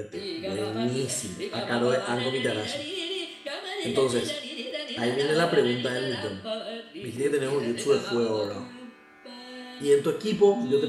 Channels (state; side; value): identical; both; correlation 1.00